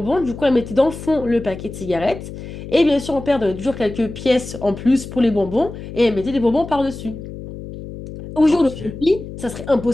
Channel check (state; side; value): noise; left; hum, 11 dB below the sound